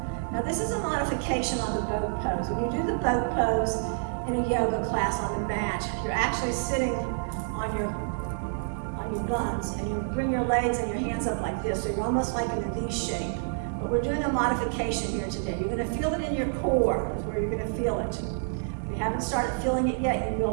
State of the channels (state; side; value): silent; left; 58 dB below the other